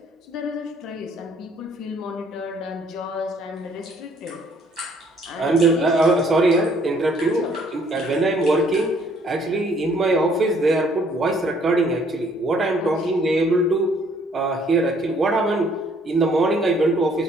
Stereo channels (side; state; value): both; normal; correlation 0.63